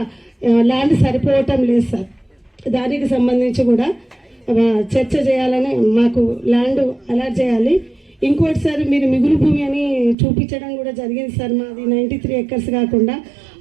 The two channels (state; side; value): drops out; left; at 10.2 s